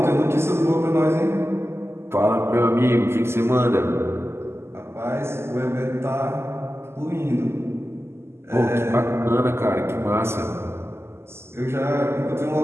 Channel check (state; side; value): late; left; 0.12 ms